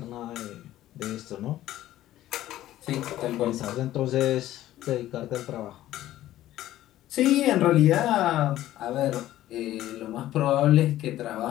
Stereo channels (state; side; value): quieter; right; 14.1 dB